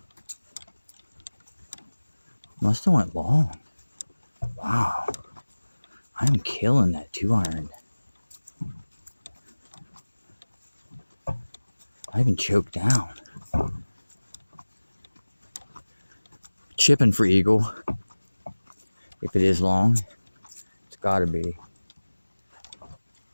Must have went long. Wow. I'm killing that 2-iron. I even choked down. Chipping for eagle. If it is long, it's gotta be.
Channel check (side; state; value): both; inverted; correlation -1.00